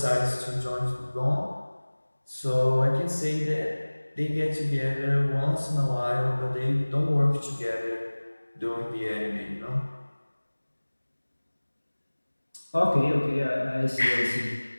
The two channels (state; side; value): inverted; both; correlation -1.00